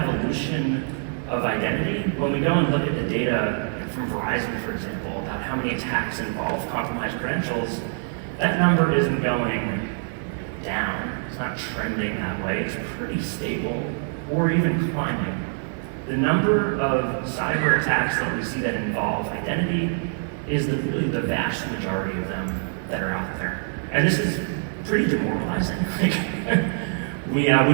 of identity, when we go and look at the data from Verizon, for example, about how many attacks involve compromised credentials, that number isn't going down. It's not trending that way. It's pretty stable or even climbing. The number of cyber attacks that we see that involve identity is really the vast majority of them that are out there. And this is pretty demoralizing. We've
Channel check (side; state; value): left; silent; 58 dB below the other